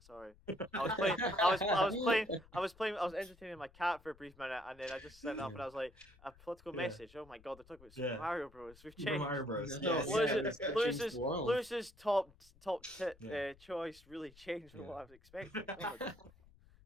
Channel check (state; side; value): noise; left; rumble, 25 dB below the sound